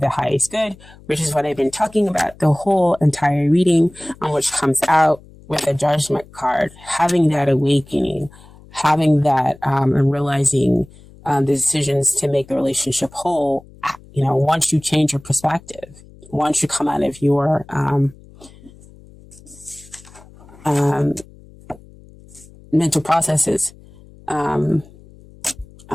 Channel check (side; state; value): left; noise; hum, 23 dB below the sound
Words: the highest good, which is what I've been talking about the whole entire reading, on which comes out with a judgment card, having that awakening, having that and realizing the decisions to make the relationship whole. You know, once you change your perspective, once you come out of your mental processes,